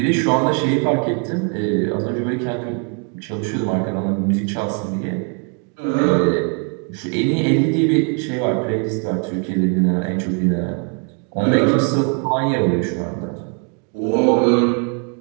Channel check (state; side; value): quieter; left; 37.6 dB